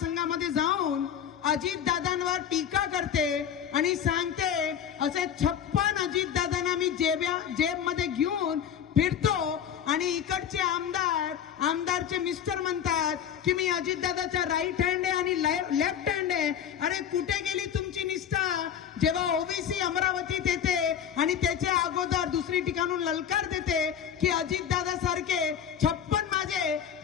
जाऊन अजितदादांवर टीका करते आणि सांगते असे 56 अजितदादांना मी जेबमध्ये घेऊन फिरतो आणि इकडचे आमदारचे मिस्टर म्हणतात की मी अजितदादाचा राईट हँड आहे आणि लेफ्ट हँड आहे। अरे कुठे गेली तुमची निष्ठा? जेव्हा ओबीसी अमरावतीत येते आणि त्याच्या अगोदर दुसरी ठिकाणून ललकार देते की अजितदादा सारखे 56 माझे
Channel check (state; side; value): quieter; right; 8.8 dB